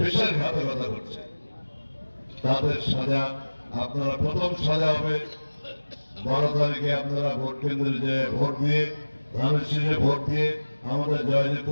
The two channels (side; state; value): both; inverted; correlation -1.00